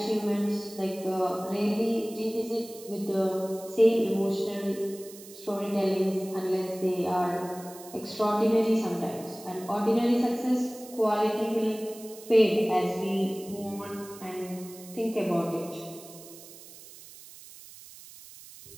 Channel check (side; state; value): right; noise; hiss, 18 dB below the sound